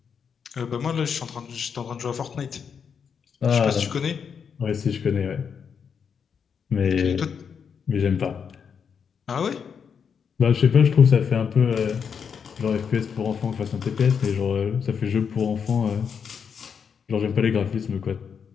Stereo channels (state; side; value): quieter; right; 6.8 dB